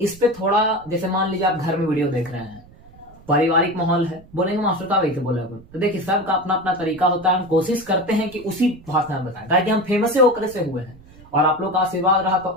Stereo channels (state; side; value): noise; right; rumble, 23 dB below the sound